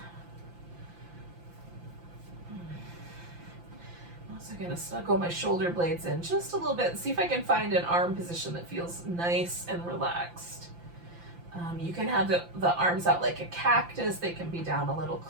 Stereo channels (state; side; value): late; left; 5.8 ms